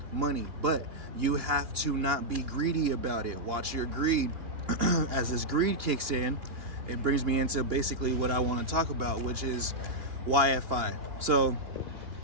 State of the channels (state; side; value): late; left; 2.8 ms